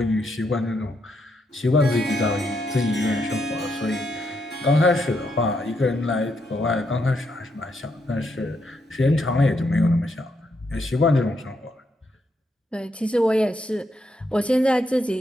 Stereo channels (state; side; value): normal; both; correlation 0.79